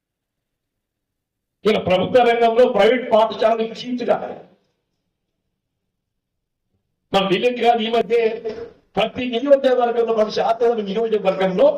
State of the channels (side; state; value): both; identical; correlation 1.00